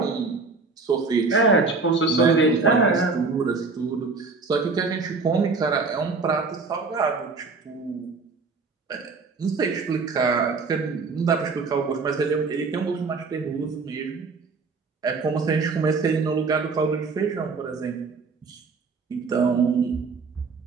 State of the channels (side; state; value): left; quieter; 4.4 dB